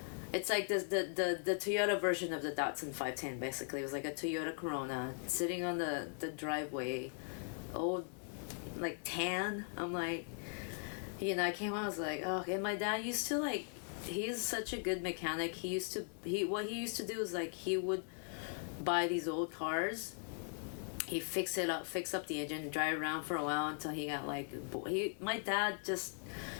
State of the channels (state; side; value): silent; right; 51 dB below the other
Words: it's like this, the Toyota version of the Datsun 510, basically. It was like a Toyota Corona sitting on the driveway, old, like tan. I'm like, you know, I came home, I was like, oh. And my dad used to like, he is such a good mechanic. What he used to do is like, he would buy these old cars, he fix up the engine, drive around for a while until he got like, my dad just